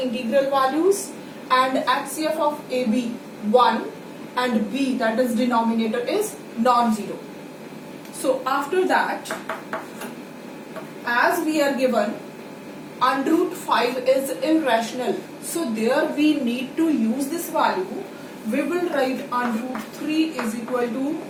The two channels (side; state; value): both; identical; correlation 1.00